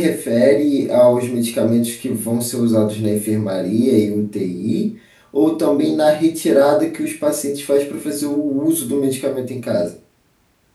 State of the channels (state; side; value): identical; both; correlation 1.00